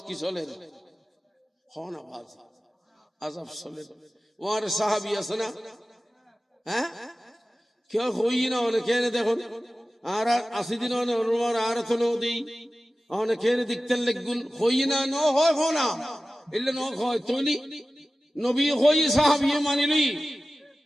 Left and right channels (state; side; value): normal; both; correlation 0.95